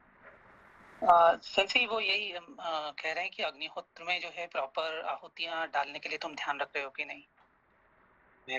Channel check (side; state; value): both; identical; correlation 1.00